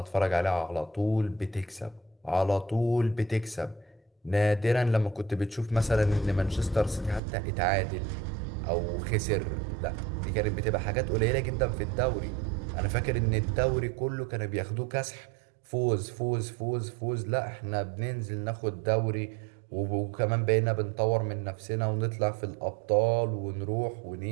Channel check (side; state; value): left; drops out; at 7.2 s